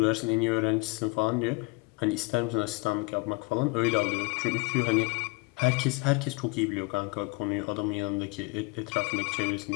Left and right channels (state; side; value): quieter; right; 26.7 dB